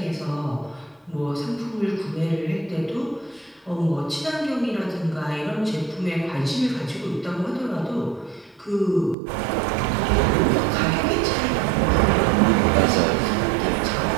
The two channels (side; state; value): left; drops out; at 9.2 s